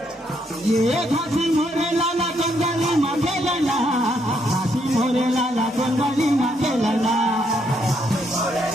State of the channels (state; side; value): normal; both; correlation 0.74